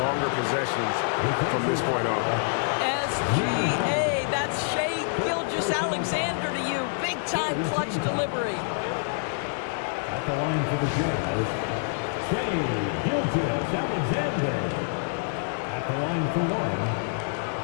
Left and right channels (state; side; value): silent; right; digital silence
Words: possessions from this point on. SGA, that's Shai Gilgeous-Alexander to you. Big-time clutch delivery. At the line for the Jazz, Shai Gilgeous-Alexander. At the line for 1.